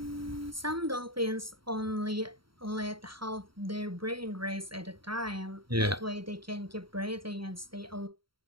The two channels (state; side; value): late; left; 0.74 ms